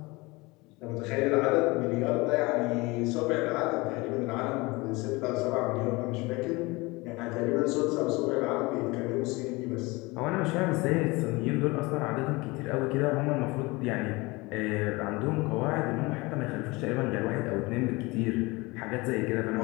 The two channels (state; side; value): quieter; right; 23.7 dB